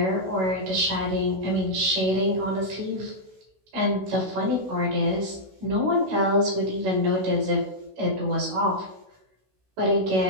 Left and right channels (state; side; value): late; left; 16 ms